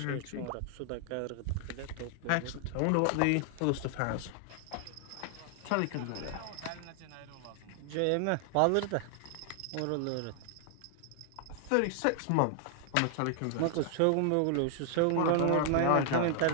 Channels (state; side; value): different; both; correlation 0.00